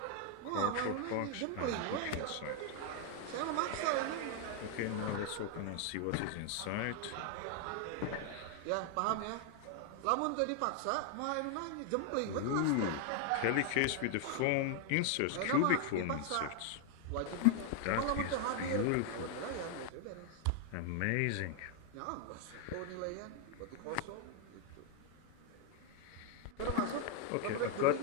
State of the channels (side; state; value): both; different; correlation 0.00